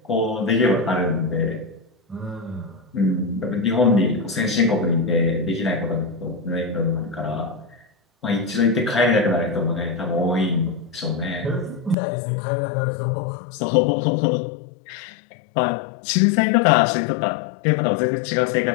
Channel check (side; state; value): right; drops out; at 12.0 s